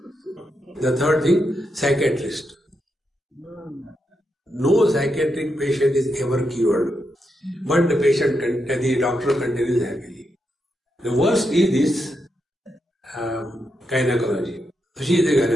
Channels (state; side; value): normal; both; correlation 0.84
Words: The third thing, psychiatrist. No psychiatric patient is ever cured, but the doctor continues happily. The worst is this gynecology. She is a